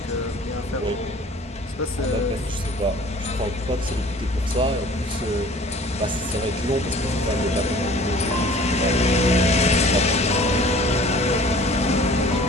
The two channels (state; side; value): normal; both; correlation 0.49